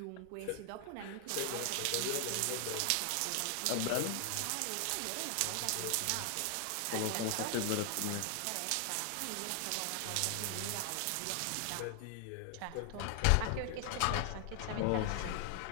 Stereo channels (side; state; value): both; different; correlation 0.00